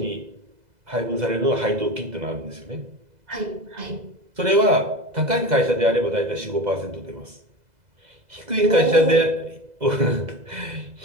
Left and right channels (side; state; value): left; late; 2.0 ms